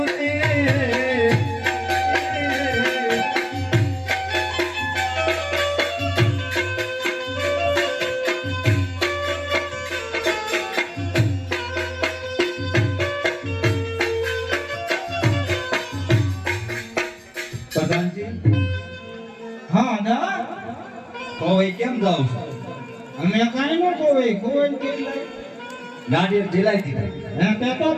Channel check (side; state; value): both; identical; correlation 1.00